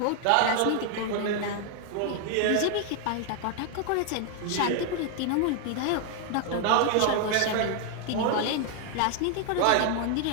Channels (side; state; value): both; different; correlation 0.00